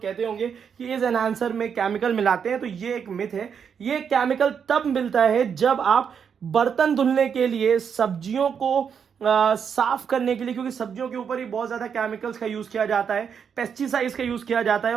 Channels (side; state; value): left; quieter; 7.1 dB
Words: कहते होंगे कि इस एनहांसर में केमिकल मिलाते हैं, तो ये एक मिथ है। ये केमिकल तब मिलता है जब आप बर्तन धुलने के लिए, सब्जियों को साफ करने के लिए, क्योंकि सब्जियों के ऊपर ही बहुत ज्यादा केमिकल्स का यूज किया जाता है, पेस्टिसाइड्स का यूज किया जाता है,